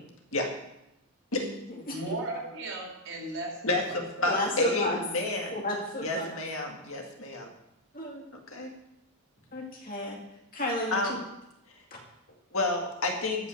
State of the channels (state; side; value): normal; both; correlation -0.05